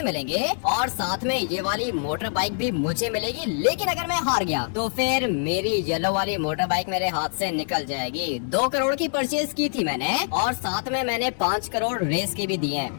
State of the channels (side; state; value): right; silent; digital silence